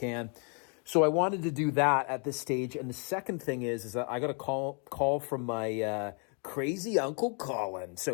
So I wanted to do that at this stage. And the second thing is that I got a call from my crazy Uncle Colin.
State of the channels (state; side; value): quieter; right; 38.0 dB